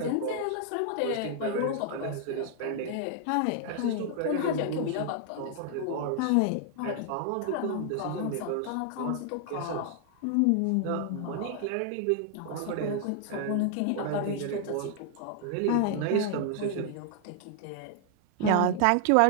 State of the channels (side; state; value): both; different; correlation 0.00